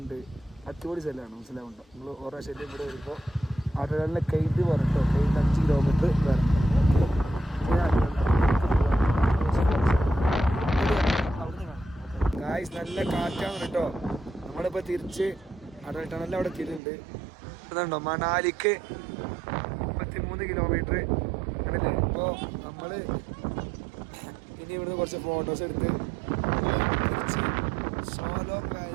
ഉണ്ട്, അടിപൊളി സ്ഥലമാണ്. മനസ്സിലാവുണ്ടോ? നിങ്ങൾ ഓരോ ശല്യം ഇവിടെ വരുമ്പോൾ അട്ടക്കടലിലെ കെയ്റ്റ് പറഞ്ഞിട്ടോ, കെയ്റ്റ് 5 കിലോമീറ്റർ വരണം. ഗായ്സ്, നല്ല കാറ്റാണ് കേട്ടോ. നമ്മളിപ്പോൾ തിരിച്ച് അടൽ ടണലിൽ അവിടെ എത്തിയിട്ടുണ്ട്. അതുണ്ടോ മണാലിക്ക് 33 കിലോമീറ്റർ ആണല്ലേ. ഇപ്പോൾ നമ്മൾ ഇനി ഇവിടുന്ന് കുറച്ച് ഫോട്ടോസ് എടുത്ത് തിരിച്ച് സോലോങ്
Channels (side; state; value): left; drops out; at 16.8 s